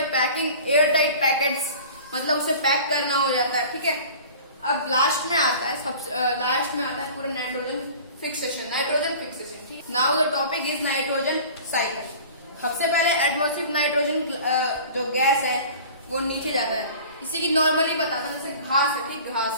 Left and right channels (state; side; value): inverted; both; correlation -0.42